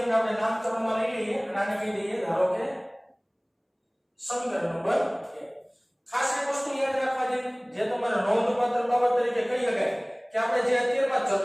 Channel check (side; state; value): both; identical; correlation 1.00